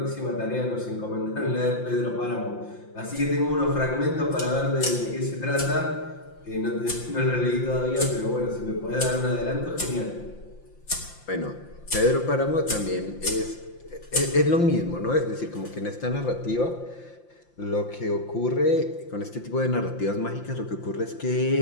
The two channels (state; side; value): late; right; 5.8 ms